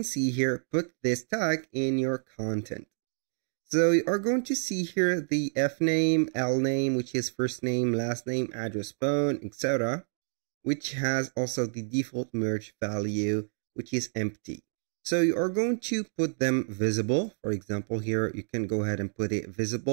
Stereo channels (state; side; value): silent; left; digital silence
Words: see here, put this tag in your content. So you are going to see here the F name, L name, which is first name, last name, address, phone, etc., which has also the default merge value, which is empty. So you are going to put them visible. For example, here you can go ahead and put it